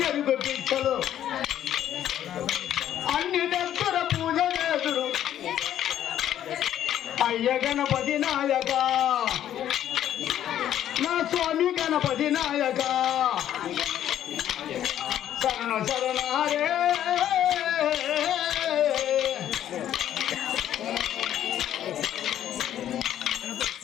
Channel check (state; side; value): quieter; right; 11.1 dB